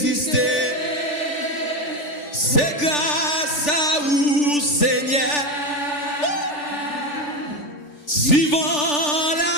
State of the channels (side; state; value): right; late; 3.4 ms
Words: c'est grâce à vous, Seigneur. Si vent